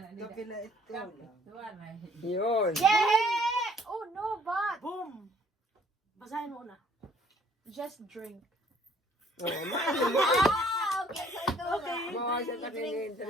lang. Yun. Yeah! Oh no, but Boom! Basahin mo na. just drink. Oh, Ah, okay. So ito Okay. mga sa takinintin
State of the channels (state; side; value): normal; both; correlation 0.60